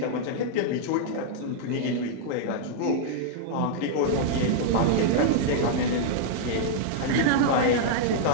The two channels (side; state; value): both; different; correlation -0.01